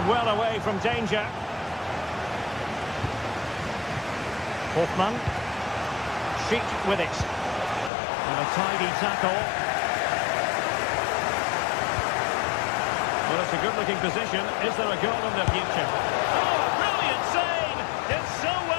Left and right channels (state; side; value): drops out; right; at 7.9 s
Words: well away from danger. Hoffmann. Schick with it. And a tidy tackle. Well, it's a good-looking position. Is there a goal in the future? Oh, brilliant save! Did so